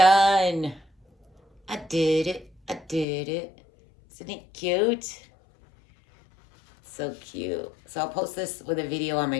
I did it. I did it. Isn't it cute? So cute. So I'll post this with a video on my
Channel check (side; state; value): right; drops out; at 3.1 s